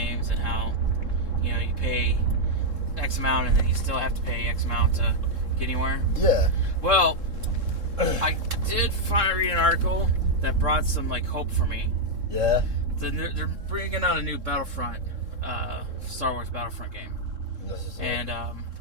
and how, you know, you pay X amount and then you still have to pay X amount to get anywhere. Yeah. Well, I did finally read an article that brought some, like, hope for me. Yeah. They're bringing out a new Battlefront, Star Wars Battlefront game. And,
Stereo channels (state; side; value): late; left; 3.7 ms